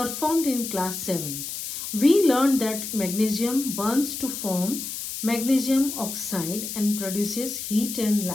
in class 7th. We learned that magnesium burns to form magnesium oxide and produces heat and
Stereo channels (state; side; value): noise; left; hiss, 6 dB below the sound